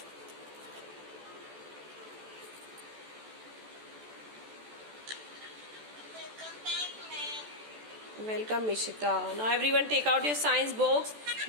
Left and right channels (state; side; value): late; left; 14 ms